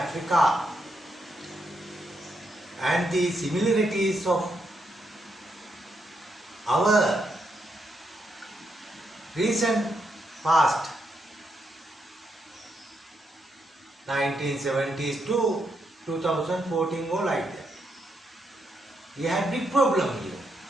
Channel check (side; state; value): both; normal; correlation 0.80